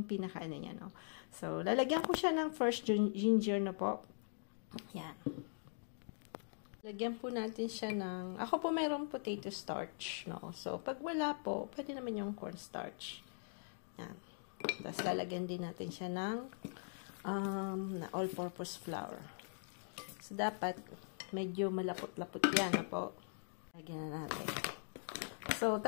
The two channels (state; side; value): silent; right; digital silence